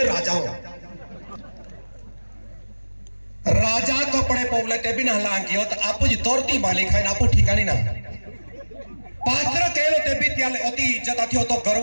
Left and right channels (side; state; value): both; inverted; correlation -1.00